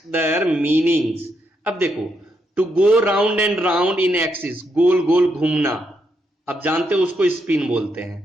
their meanings. अब देखो, to go round and round in axis, गोल गोल घूमना, अब जानते हो उसको स्पिन बोलते हैं।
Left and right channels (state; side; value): normal; both; correlation 0.79